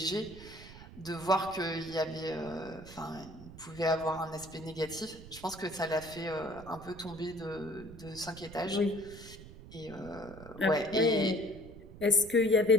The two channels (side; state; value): right; noise; rumble, 16 dB below the sound